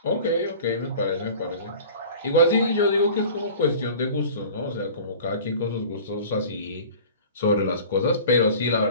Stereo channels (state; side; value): inverted; both; correlation -0.42